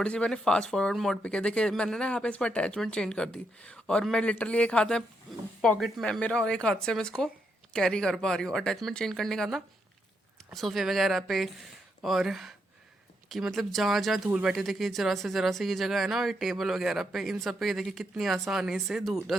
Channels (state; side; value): normal; both; correlation 0.79